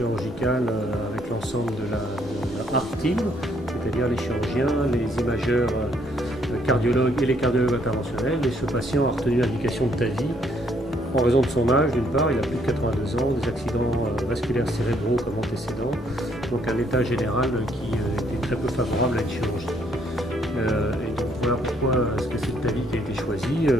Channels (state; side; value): normal; both; correlation 0.68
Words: avec l'ensemble de la ART team, c'est-à-dire les chirurgiens, les imageurs cardiologues et les cardiologues interventionnels. Et ce patient a retenu l'indication de TAVI en raison de son âge, d'une part, il a plus de 82 ans, des accidents vasculaires cérébraux comme antécédents, donc un état général qui était très peu favorable à une chirurgie. Et donc voilà pourquoi c'est cette TAVI qui a été choisie,